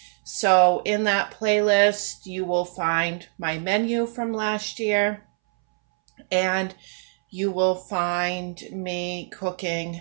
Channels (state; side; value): silent; left; 62 dB below the other